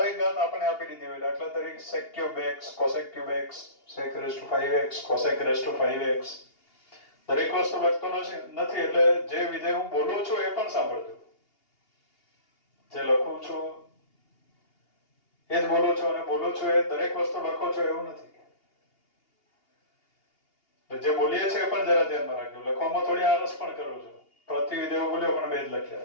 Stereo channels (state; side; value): late; right; 2.8 ms